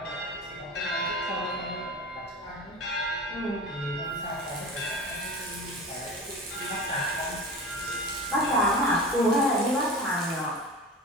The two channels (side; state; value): both; normal; correlation 0.33